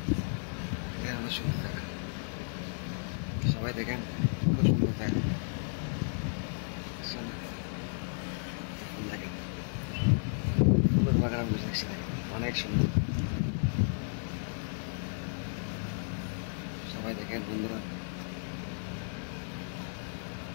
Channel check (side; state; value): right; silent; 56 dB below the other